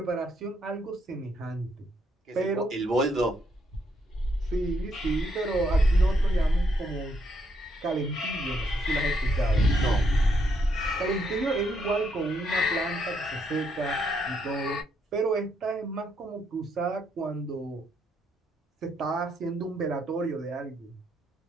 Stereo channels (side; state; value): both; normal; correlation 0.75